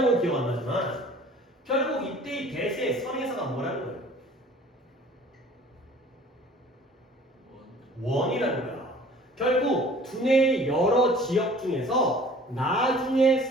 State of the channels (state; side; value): normal; both; correlation 0.50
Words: 기억 안 나지만 결국 이때의 대세 선행사가 뭐라는 거예요? 원이라는 거야. 결국 두뇌의 여러 지역 중에서 나중에